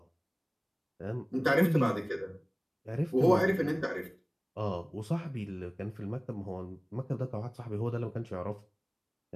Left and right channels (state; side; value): identical; both; correlation 1.00